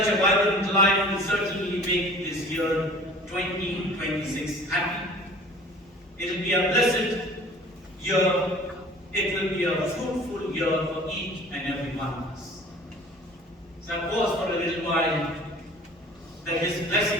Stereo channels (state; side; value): normal; both; correlation 0.47